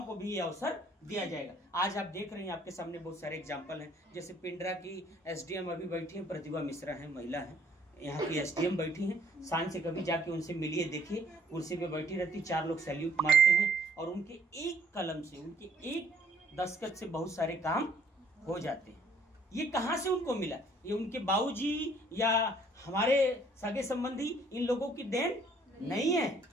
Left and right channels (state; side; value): normal; both; correlation 0.61